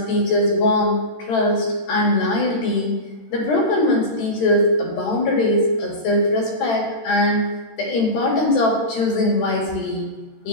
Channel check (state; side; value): late; right; 13 ms